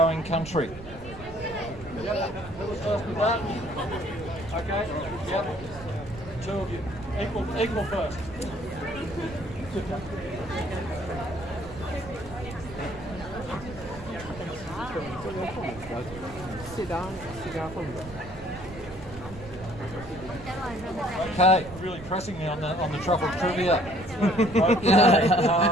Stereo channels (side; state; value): right; noise; rumble, 15 dB below the sound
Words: country? Yep, who was first with that? Okay, yep. 2 of you. Equal first. Okay, really pressing me on the truffle trivia. Okay,